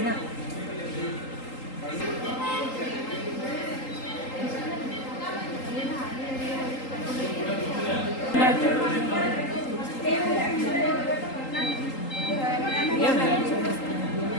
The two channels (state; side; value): late; right; 3.8 ms